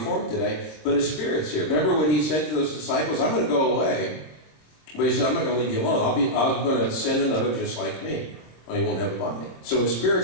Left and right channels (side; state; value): right; late; 26 ms